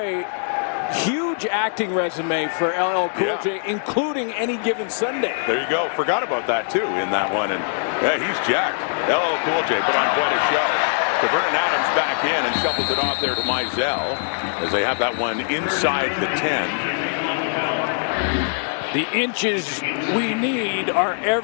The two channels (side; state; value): right; silent; digital silence